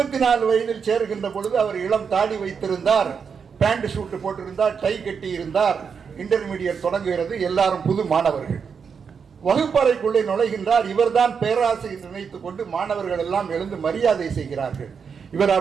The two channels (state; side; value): quieter; left; 6.3 dB